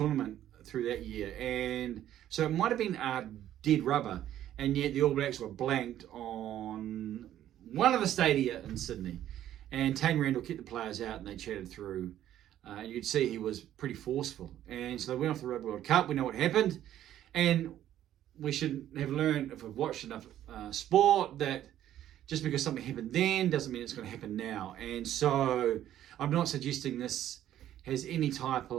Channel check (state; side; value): quieter; left; 11.9 dB